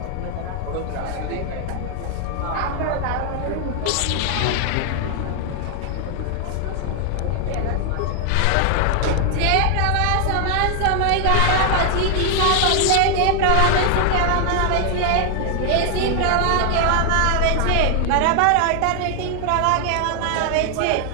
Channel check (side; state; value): both; different; correlation 0.00